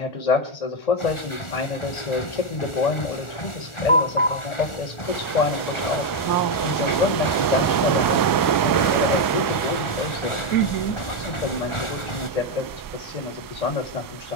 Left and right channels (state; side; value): late; right; 1.4 ms